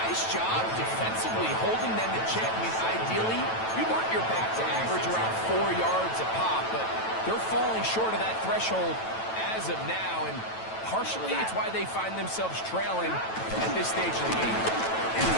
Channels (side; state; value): right; late; 9.1 ms